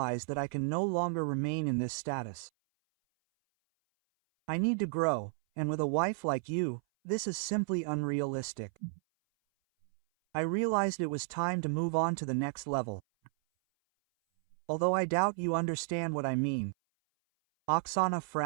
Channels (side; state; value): left; silent; 56 dB below the other